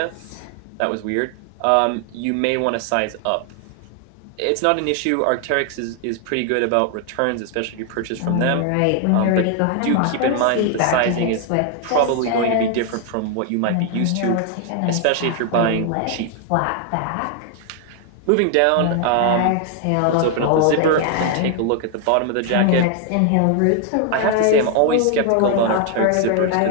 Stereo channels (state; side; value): different; both; correlation 0.00